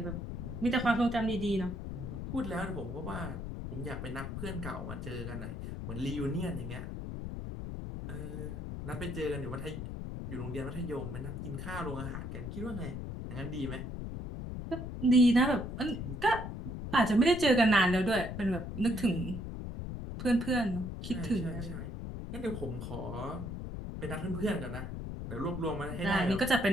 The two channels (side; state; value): left; noise; rumble, 6 dB below the sound